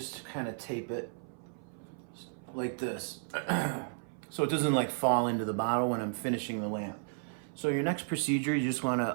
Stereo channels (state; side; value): silent; left; 55 dB below the other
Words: kind of tape it like this. So it doesn't like fall into the bottle when I'm finishing the lamp. So your next procedure, you just want